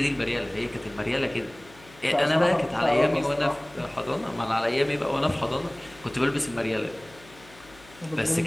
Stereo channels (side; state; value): left; noise; hum, 24 dB below the sound